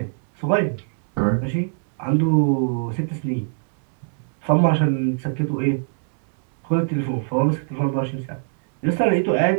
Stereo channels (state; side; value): silent; left; digital silence